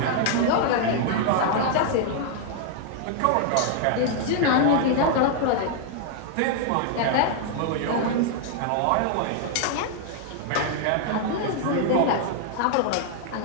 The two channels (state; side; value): different; both; correlation 0.00